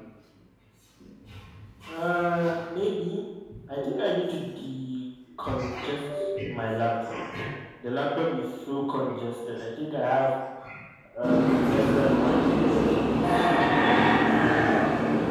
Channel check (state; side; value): identical; both; correlation 1.00